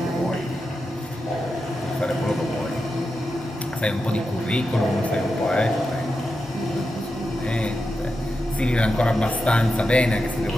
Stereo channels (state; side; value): normal; both; correlation 0.89